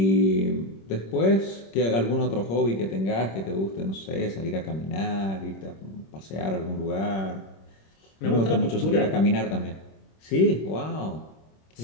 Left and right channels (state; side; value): late; right; 26 ms